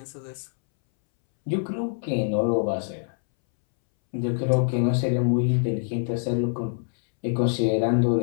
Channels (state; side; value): silent; right; 62 dB below the other